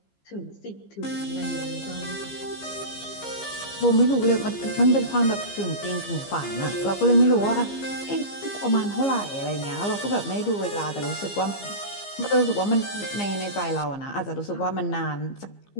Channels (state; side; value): late; right; 15 ms